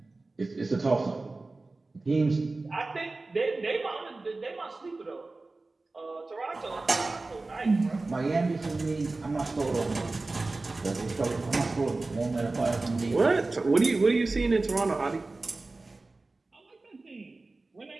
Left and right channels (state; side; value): quieter; left; 3.3 dB